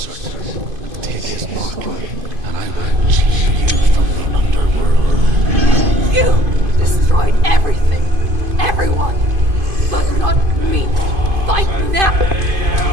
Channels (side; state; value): left; late; 2.5 ms